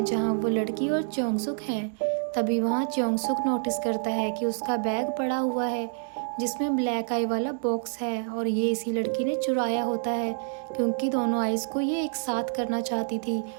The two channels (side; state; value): left; silent; digital silence